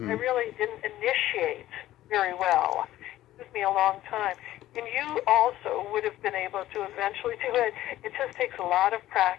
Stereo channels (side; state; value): right; quieter; 14.5 dB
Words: really didn't initiate very well. It took me a long time. And you also would have been able to eventually do it. It just takes a lot of